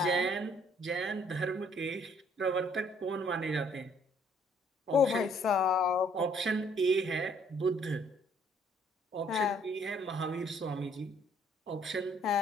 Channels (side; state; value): both; normal; correlation 0.63